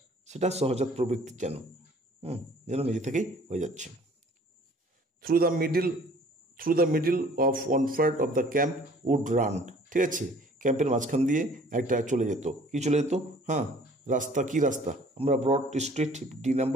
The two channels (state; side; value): normal; both; correlation 0.53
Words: সেটা সহজাত প্রবৃত্তি যেন যেন নিজে থেকেই হয়ে যাচ্ছে। Through the middle of one part of the camp would run. ঠিক আছে, ক্যাম্পের মাঝখান দিয়ে একটা চলে যেত, কি চলে যেত? হ্যাঁ, রাস্তা, কি রাস্তা? আমরা ব্রড স্ট্রিট, ডি